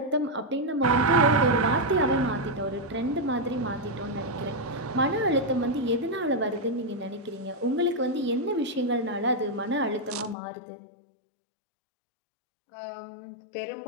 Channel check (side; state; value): right; drops out; at 10.4 s